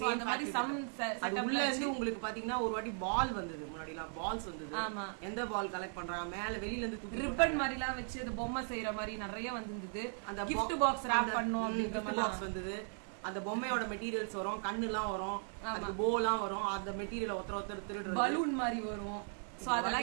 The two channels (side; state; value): left; silent; 53 dB below the other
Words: அந்த மாதிரி சம் செட்டப்ல உங்களுக்கு பாத்தீங்கன்னா ஒரு வாட்டி பால் வந்தது, முன்னாடிலாம் பால்ஸ் வந்தது. ஆமா, எந்த பால் கலெக்ட் பண்றாங்க, மேல வெளியில இருந்து ரிப்பன் மாதிரி எல்லாம் வச்சு அந்த பொம்மை செய்யற மாதிரி நிறைய வந்திருந்தது. அந்த கிஃப்ட் பாக்ஸ் ராப் பண்ணோம் அப்படின்ற மாதிரி பாக்ஸ் வந்தது. அந்த பொம்மையோட மெட்டீரியல்ஸ் வரும், கண்ணு எல்லாம் வரும், அந்த போலாம் வரும், அந்த மெட்டீரியல் ஒருத்தர் திருடு பலூன் மாதிரி வரும். சோ